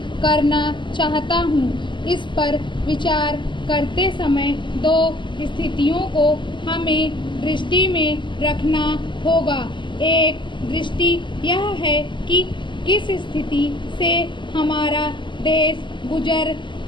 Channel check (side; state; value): right; late; 0.23 ms